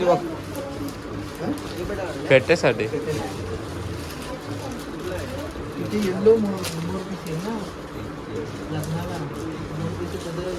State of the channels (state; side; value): identical; both; correlation 1.00